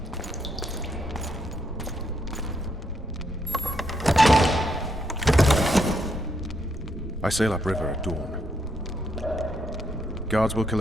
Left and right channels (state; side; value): normal; both; correlation 0.76